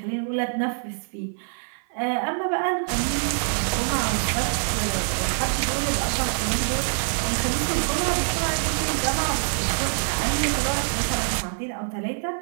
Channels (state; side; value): silent; left; 57 dB below the other